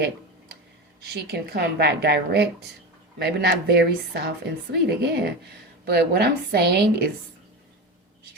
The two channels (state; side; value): normal; both; correlation 0.23